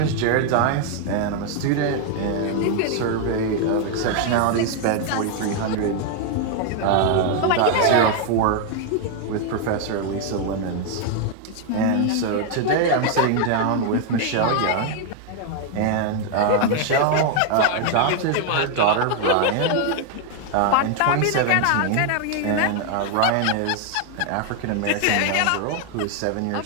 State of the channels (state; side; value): different; both; correlation 0.00